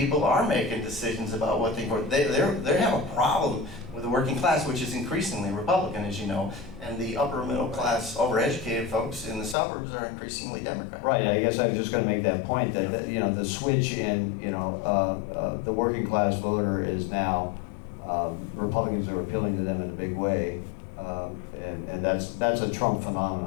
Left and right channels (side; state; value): right; drops out; at 9.6 s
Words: are making decisions about what they have a problem with the working class, which is increasingly Republican, as you know, and the upper middle class, overeducated folks in the suburbs are increasingly Democrat. Right, I guess I was just gonna make that point, that you know, the switch in, you know, the working class voter is now, Republicans are appealing to them in a big way, and that's a Trump